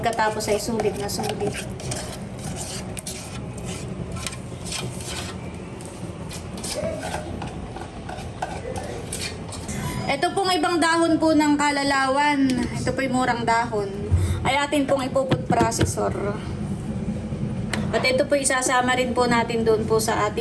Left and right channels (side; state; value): both; identical; correlation 1.00